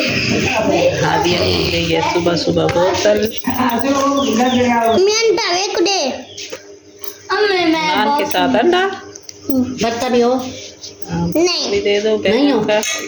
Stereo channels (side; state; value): both; identical; correlation 1.00